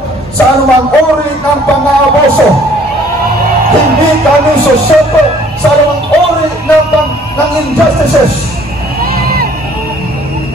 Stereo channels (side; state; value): both; normal; correlation 0.57